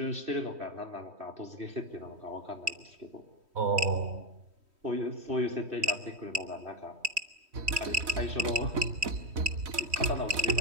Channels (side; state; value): left; late; 3.1 ms